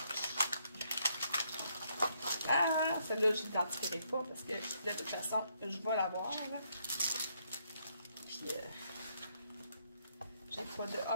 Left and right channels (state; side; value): inverted; both; correlation -0.73